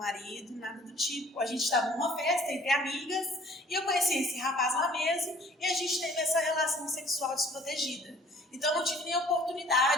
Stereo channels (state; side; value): normal; both; correlation 0.53